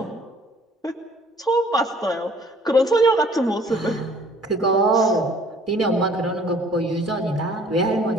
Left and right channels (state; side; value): normal; both; correlation 0.56